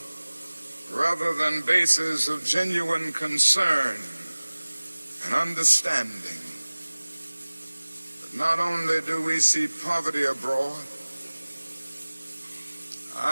rather than bases of genuine concern and understanding. But not only do we see poverty abroad,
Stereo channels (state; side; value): inverted; both; correlation -1.00